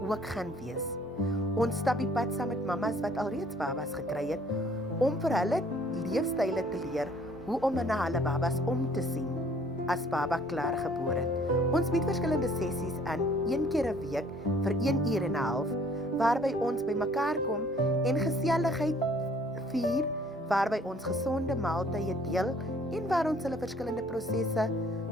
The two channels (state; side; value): normal; both; correlation 0.58